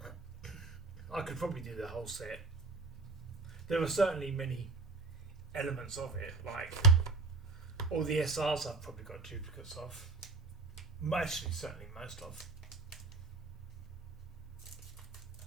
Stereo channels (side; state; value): left; quieter; 3.9 dB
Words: I could probably do the whole set There are certainly many elements of it, like all the SRs I've probably got duplicates of. Actually, certainly most of.